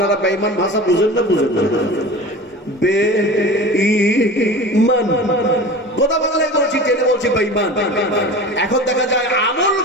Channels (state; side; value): normal; both; correlation 0.35